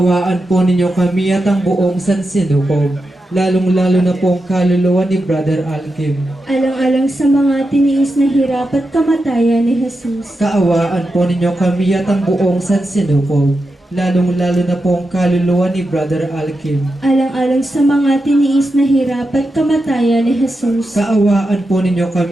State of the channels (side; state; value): both; normal; correlation 0.88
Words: po ninyo kami at ang buong sansinukob, lalong-lalo na po ang kaluluwa ni Brother Alkim. Alang-alang sa mga tiniis na hirap at kamatayan ni Jesus. Kaawaan po ninyo kami at ang buong sansinukob, lalong-lalo na po ang kaluluwa ni Brother Alkim. Alang-alang sa mga tiniis na hirap at kamatayan ni Jesus. Kaawaan po ninyo